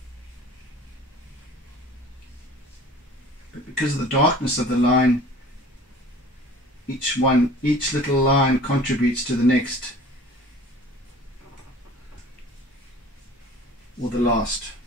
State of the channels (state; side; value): normal; both; correlation 0.45